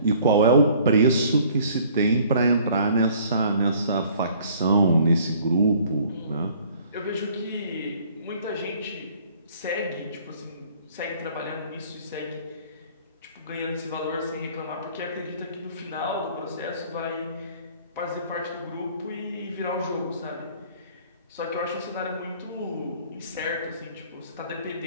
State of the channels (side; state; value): both; inverted; correlation -0.55